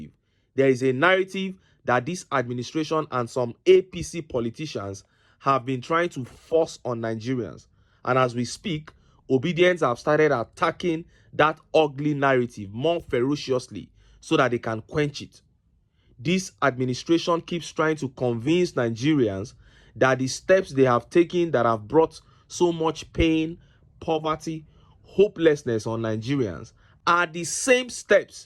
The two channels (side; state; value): both; identical; correlation 1.00